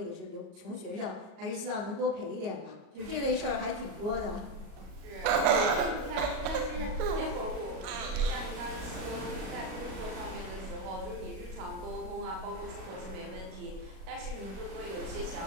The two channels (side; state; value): left; late; 37 ms